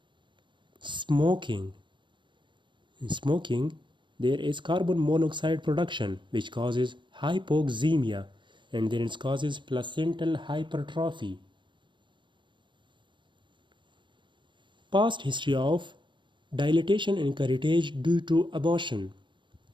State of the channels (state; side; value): late; left; 0.23 ms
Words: Smoking. In smoking, there is carbon monoxide production which causes hypoxemia, and then it causes placental hypertrophy. Past history of dilatation and curettage due to abortion.